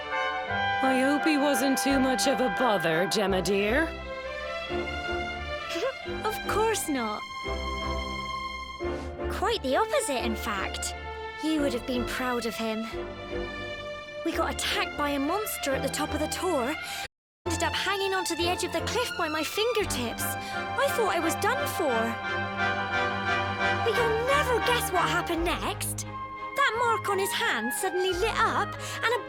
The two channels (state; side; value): identical; both; correlation 1.00